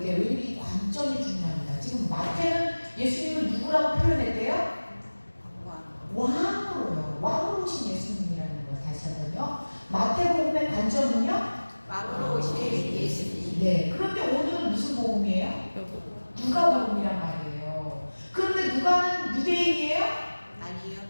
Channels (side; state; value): both; inverted; correlation -1.00